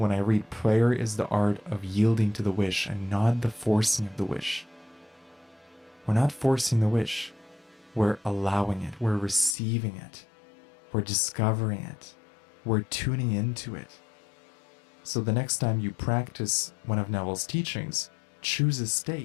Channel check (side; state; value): right; drops out; at 9.6 s